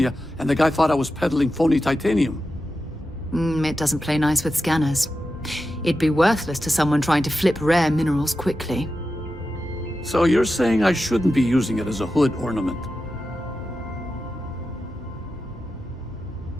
and the guy thought I was peddling phony titanium. It doesn't play nice with scanners. It'd be worthless to someone trying to flip rare minerals quickly. So you're saying I shouldn't be using it as a hood ornament?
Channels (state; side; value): normal; both; correlation 0.91